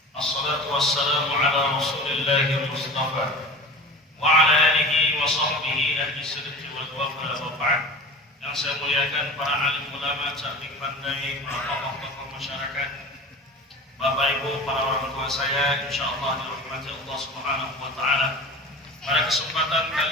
Assalatu wassalamu ala rasulillahi mustafa wa ala alihi wa sahbihi ahli sidqi wal wafa wa ba'd. Yang saya muliakan para alim ulama, cerdik pandai, para tokoh-tokoh masyarakat, Bapak Ibu, para orang tua saya, insyaallah dirahmati Allah Subhanahu wa taala. Pada kesempatan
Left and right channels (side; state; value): both; normal; correlation 0.35